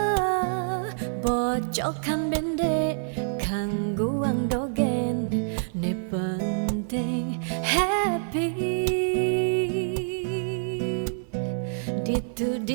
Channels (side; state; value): left; silent; 57 dB below the other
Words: bocokan bende kangguang dogen ne penting happy ditu